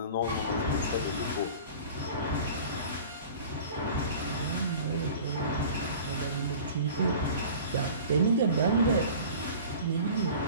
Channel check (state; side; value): inverted; both; correlation -0.41